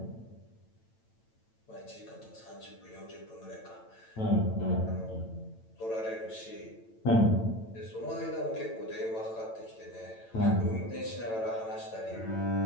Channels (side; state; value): right; late; 8.9 ms